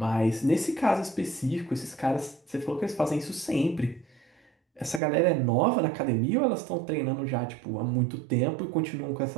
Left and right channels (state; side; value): drops out; left; at 5.0 s